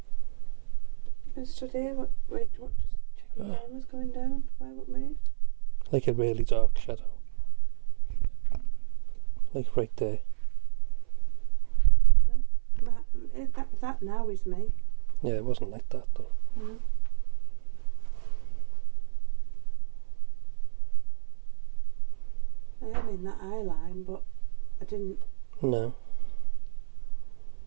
I stood here. What just checking time was going down. Why, what moved? Like a really dark shadow. Like right there. No. That now is me. Yeah, it wasn't like that though. No. I am in that eye line, but I didn't. No.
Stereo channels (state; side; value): silent; left; 56 dB below the other